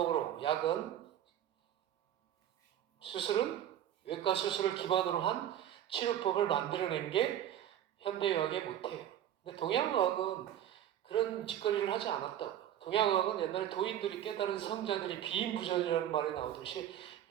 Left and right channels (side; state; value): left; quieter; 11.1 dB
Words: 약은 수술은 외과 수술을 기반으로 한 치료법을 만들어낸 게 현대의학의 모태예요. 근데 동양의학은 그런 짓거리를 하지 않았다고. 동양의학은 옛날에 도인들이 깨달은 성자들이 비인부전이라는 말이 나오듯이